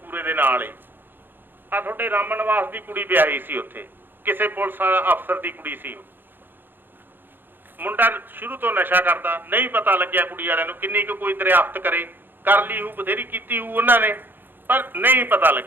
ਦੇ ਨਾਲ ਹੀ ਆ, ਤੁਹਾਡੇ ਰਾਮਨ ਨਿਵਾਸ ਦੀ ਕੁੜੀ ਵਿਆਹੀ ਸੀ ਉੱਥੇ, ਕਿਸੇ ਪੁਲਿਸ ਅਫਸਰ ਦੀ ਕੁੜੀ ਸੀ। ਮੁੰਡਾ ਸ਼ੁਰੂ ਤੋਂ ਨਸ਼ਾ ਕਰਦਾ, ਨਹੀਂ ਪਤਾ ਲੱਗਿਆ ਕੁੜੀ ਵਾਲਿਆਂ ਨੂੰ ਕਿੰਨੀ ਕੁ ਕੋਈ ਦਰਿਆਫਤ ਕਰੇ, ਕਰ ਲਈ ਹੂ, ਬਥੇਰੀ ਕੀਤੀ ਹੂ ਉਹਨਾਂ ਨੇ, ਪਰ ਨਹੀਂ ਪਤਾ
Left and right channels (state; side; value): late; left; 0.096 ms